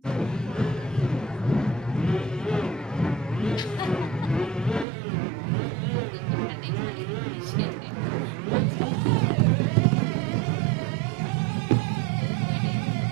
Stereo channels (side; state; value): left; drops out; at 4.9 s